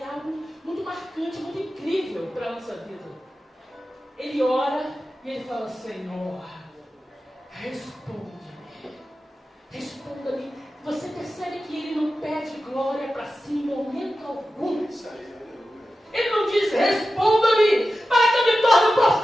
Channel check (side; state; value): both; normal; correlation 0.93